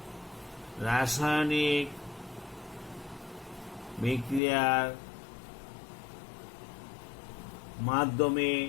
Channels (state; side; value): drops out; right; at 4.4 s